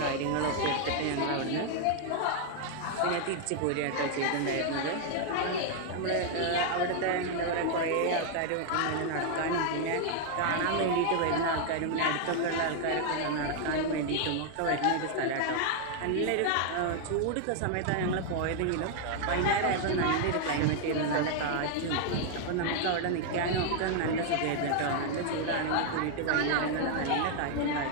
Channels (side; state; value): both; different; correlation 0.00